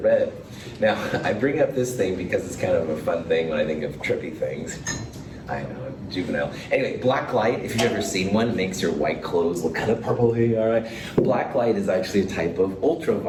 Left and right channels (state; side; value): identical; both; correlation 1.00